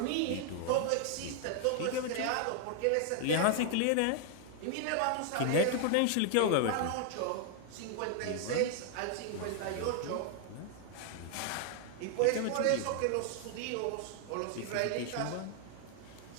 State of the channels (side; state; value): both; different; correlation 0.00